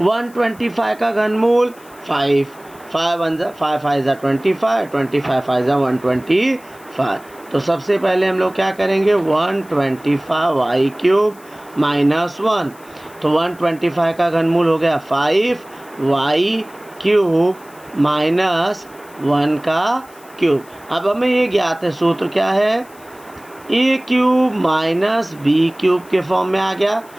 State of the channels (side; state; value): left; noise; hiss, 25 dB below the sound